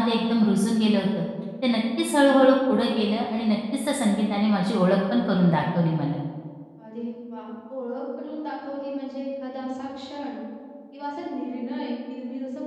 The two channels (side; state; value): both; identical; correlation 1.00